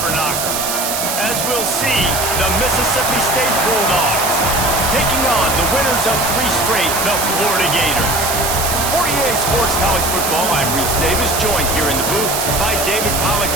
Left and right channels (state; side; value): noise; right; hiss, 2 dB below the sound